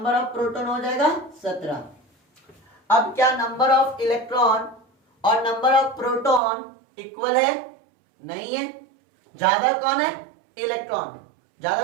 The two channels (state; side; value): drops out; left; at 6.4 s